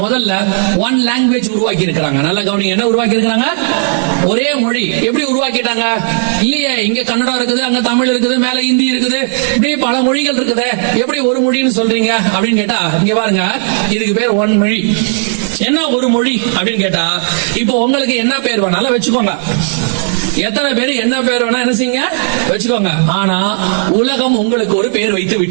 முதல்ல ஒன் லாங்குவேஜ் உருவாக்கி இருக்கிறாங்க. நல்ல கவனிங்க, என்ன உருவாக்கி இருக்கிறாங்க? ஒரே மொழி. எப்படி உருவாக்கிட்டாங்க? இல்லையே, இங்க கன்னடம் இருக்குது, அங்க தமிழ் இருக்குது, மேல ஹிந்தி இருக்குது, இப்படியே பல மொழிகள் இருக்குது. எப்படி ஒரு மொழின்னு சொல்றீங்க அப்படின்னு கேட்டா, இங்க பாருங்க, இதுக்கு பேர் ஒன் மொழி. என்ன ஒரு மொழி அப்படின்னு கேட்டா, இப்போ உங்களுக்கு என்ன பேர் வேணாலும் வச்சுக்கோங்க. எத்தனை பேர் என்ன பேர் வேணா என்ன செய்யுங்க வச்சுக்கோங்க. ஆனா உலகம் உங்களுக்கு ஒரு பேர் வைத்து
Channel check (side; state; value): left; silent; digital silence